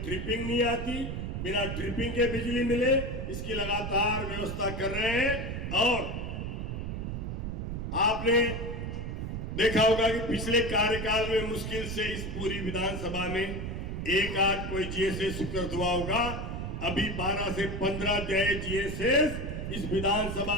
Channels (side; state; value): right; noise; rumble, 4 dB below the sound